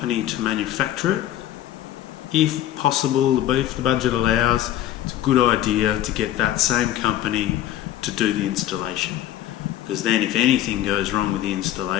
to manufacture it, if possible, if the budget allows, it's a good idea to get that same company to do the installation. Because then if anything goes wrong with the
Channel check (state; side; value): quieter; right; 12.7 dB